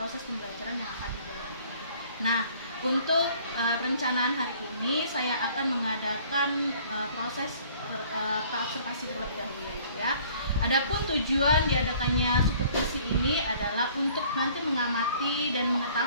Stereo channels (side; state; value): both; inverted; correlation -0.55